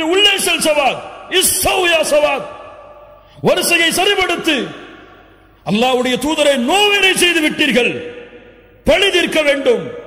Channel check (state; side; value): identical; both; correlation 1.00